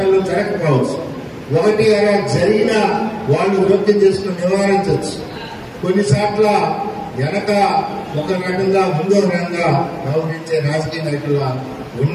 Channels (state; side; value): identical; both; correlation 1.00